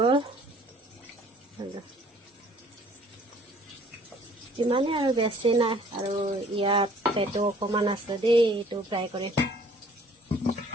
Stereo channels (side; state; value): both; normal; correlation 0.56